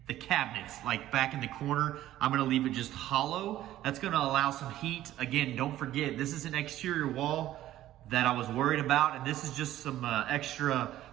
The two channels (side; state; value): left; quieter; 13.8 dB